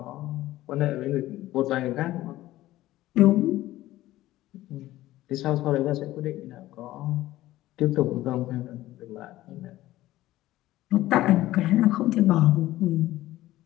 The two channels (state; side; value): quieter; right; 15.8 dB